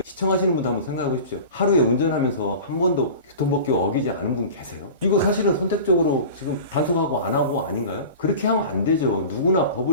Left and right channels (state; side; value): inverted; both; correlation -0.36